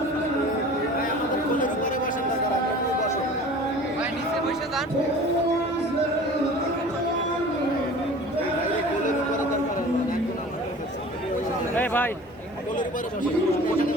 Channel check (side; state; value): both; normal; correlation 0.42